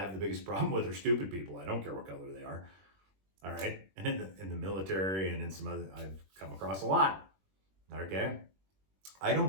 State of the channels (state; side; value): late; left; 21 ms